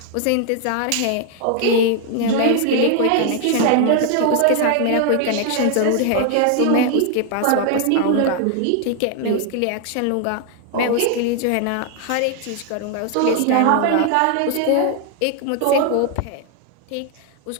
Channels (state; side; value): different; both; correlation 0.00